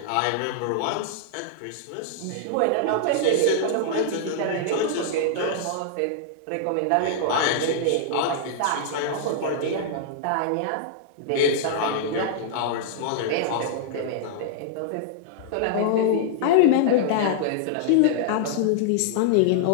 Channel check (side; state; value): both; different; correlation -0.01